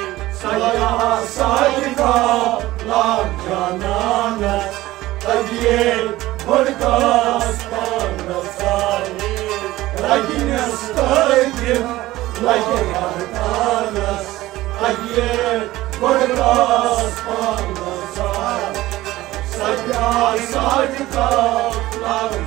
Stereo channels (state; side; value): quieter; left; 17.0 dB